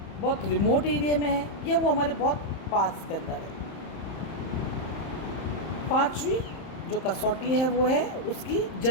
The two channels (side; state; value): right; late; 31 ms